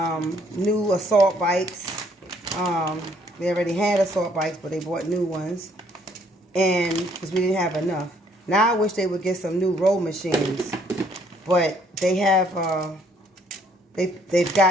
new assault bikes. They already had assault bikes, but they bought new ones, and because we didn't have enough. Now I wish they would get some new row machines, but they have. They've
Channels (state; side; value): normal; both; correlation 0.65